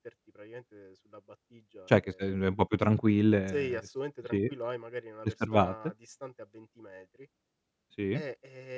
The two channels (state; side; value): identical; both; correlation 1.00